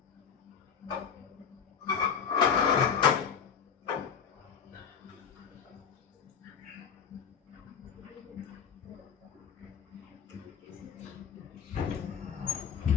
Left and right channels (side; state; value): right; quieter; 7.2 dB